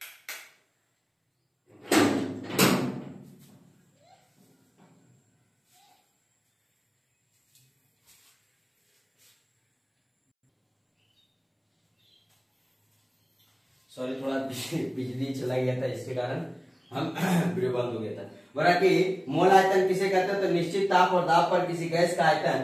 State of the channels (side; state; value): both; identical; correlation 1.00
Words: सॉरी थोड़ा बिजली चला गया था, इसके कारण हम वीडियो बंद हो गया था। बोला कि मोल आयतन किसे कहते हैं? तो निश्चित ताप और दाब पर किसी गैस का